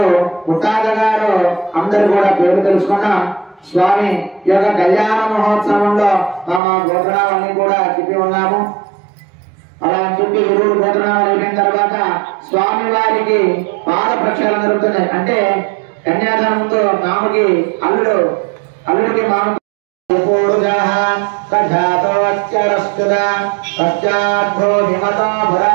ముత్తాత గారు అందరు కూడా పేరు తెలుసుకున్నాం. స్వామి ఈ యొక్క కళ్యాణ మహోత్సవంలో మా గోత్రాలన్నీ కూడా చెప్పి ఉన్నాము. అలా చెప్పి గురువులు గోత్రాలు అయిపోయిన తర్వాత స్వామి వారికి పాద ప్రక్షాళన జరుగుతున్నాయి. అంటే కన్యాదానంతో మామకి అల్లుడికి మామ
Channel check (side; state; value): left; drops out; at 6.6 s